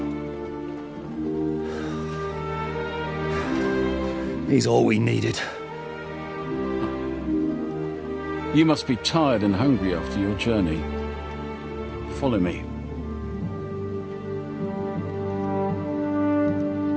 He's all we needed. You must be tired and hungry after your journey. Follow me.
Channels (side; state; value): both; identical; correlation 1.00